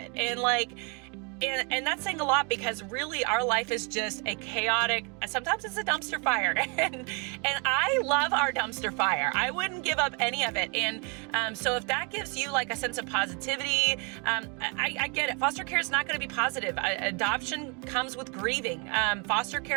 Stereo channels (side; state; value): left; quieter; 32.5 dB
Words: and like. And that's saying a lot, because really our life is just a chaotic, sometimes it's a dumpster fire, and I love our dumpster fire. I wouldn't give up any of it. And so if that gives you like a sense of positivity, I get it. Foster care is not going to be positive. Adoption comes with grieving. Foster